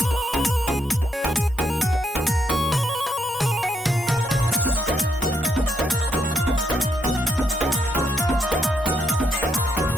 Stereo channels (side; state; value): both; normal; correlation 0.77